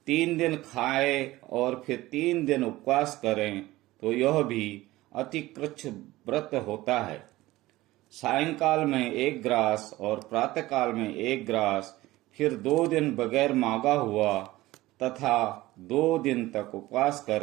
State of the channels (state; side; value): quieter; left; 17.9 dB